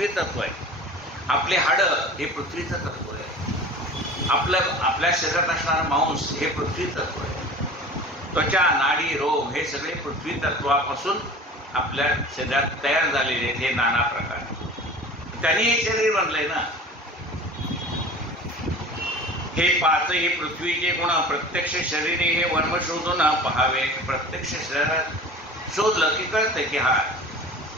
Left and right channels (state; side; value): normal; both; correlation 0.39